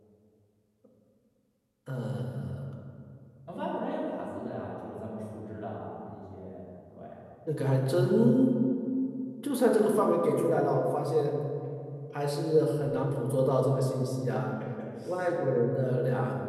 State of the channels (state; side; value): identical; both; correlation 1.00